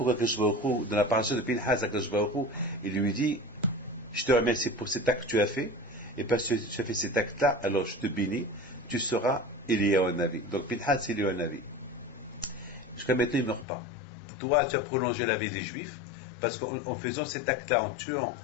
Akadosh Baruch Hu, dans la paracha de Pinhas, Akadosh Baruch Hu, il lui dit, je te remercie pour cet acte que tu as fait, et parce que tu as fait cet acte-là, alors je te bénis, tu seras Eliyahu Navi. Donc Pinhas, c'est Eliyahu Navi. Jusqu'à maintenant, il ne meurt pas. Toi, tu as prolongé la vie des Juifs, parce qu'en faisant cet acte-là, en tuant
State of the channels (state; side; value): drops out; right; at 13.7 s